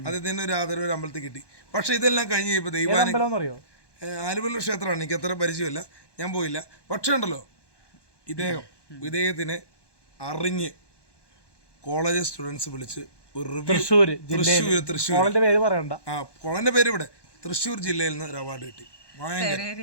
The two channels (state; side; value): late; right; 1.2 ms